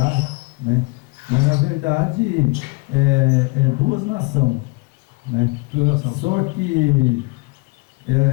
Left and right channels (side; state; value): right; quieter; 27.4 dB